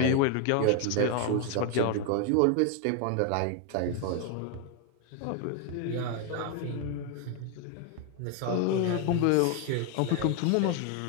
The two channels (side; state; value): both; different; correlation 0.01